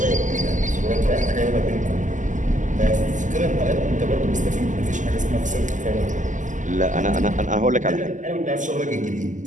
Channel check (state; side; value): late; left; 0.37 ms